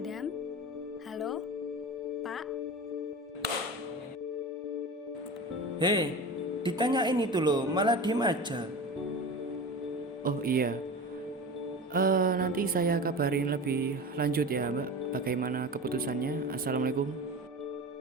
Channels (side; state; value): both; normal; correlation 0.31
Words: Halo? Pak? Hei, ditanyain itu loh, malah diem aja. Oh iya, nanti saya kabarin lebih lanjut ya Mbak, bagaimana keputusannya. Assalamualaikum.